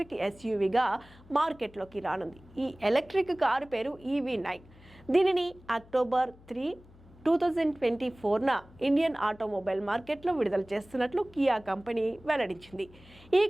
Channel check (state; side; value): noise; left; hum, 24 dB below the sound